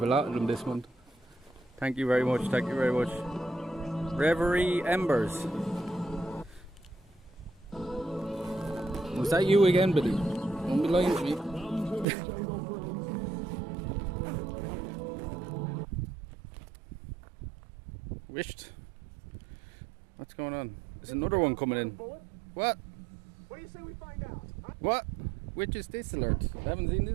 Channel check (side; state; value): left; drops out; at 12.1 s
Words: a lot of them this month. Thank you very much, thank you very much. Reverie Embers. Was that you again, Billy? Don't be lying to me. Wished. What's going on? There's another one coming in. What? What do you say we find out? Huh? What? Which is this alert? I haven't seen